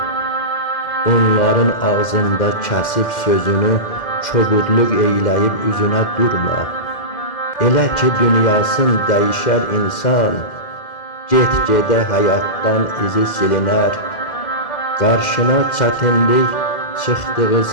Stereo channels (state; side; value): late; right; 2.1 ms